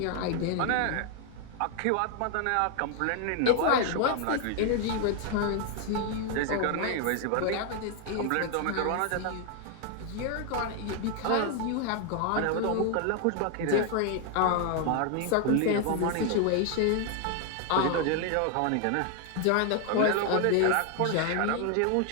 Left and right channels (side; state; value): both; different; correlation 0.00